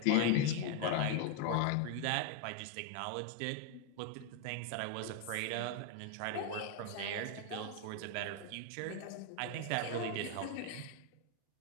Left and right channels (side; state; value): both; different; correlation 0.01